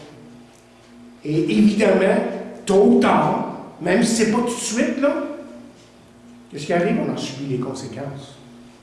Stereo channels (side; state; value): both; identical; correlation 1.00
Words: Et évidemment, tôt ou tard, même si ce n'est pas tout de suite, là, qu'est-ce qui arrive? On en subit les conséquences.